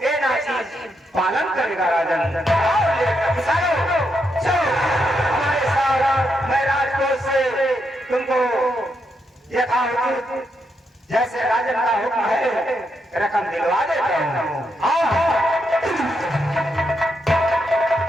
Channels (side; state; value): both; normal; correlation 0.81